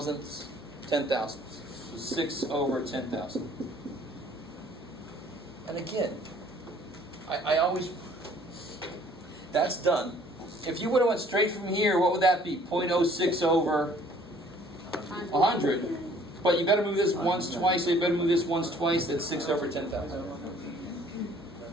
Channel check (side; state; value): both; normal; correlation 0.57